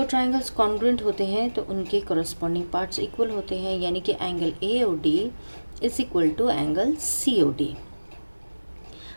ट्राइंगल्स कॉन्ग्रुएंट होते हैं तो उनके कॉरस्पॉन्डिंग पार्ट्स इक्वल होते हैं, यानी कि angle AOD is equal to angle COD।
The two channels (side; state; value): both; inverted; correlation -1.00